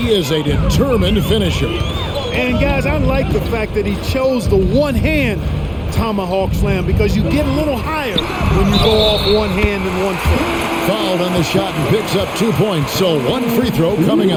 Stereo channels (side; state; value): both; identical; correlation 1.00